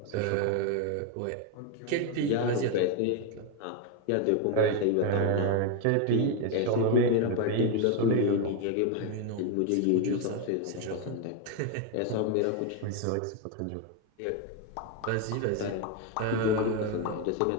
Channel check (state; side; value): different; both; correlation 0.01